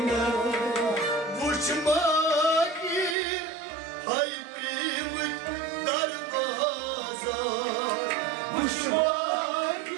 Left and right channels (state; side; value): drops out; left; at 3.2 s